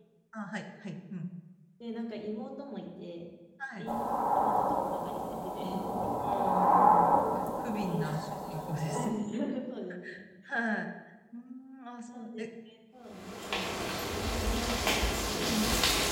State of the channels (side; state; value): both; identical; correlation 1.00